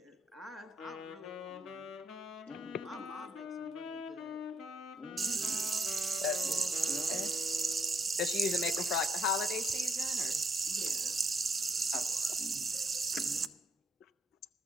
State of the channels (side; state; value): both; normal; correlation 0.73